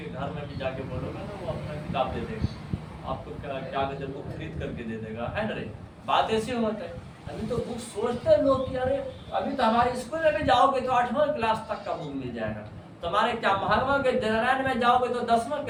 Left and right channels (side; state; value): both; identical; correlation 1.00